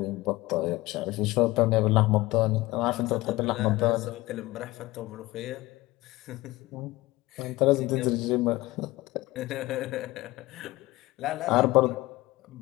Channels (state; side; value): quieter; right; 19.3 dB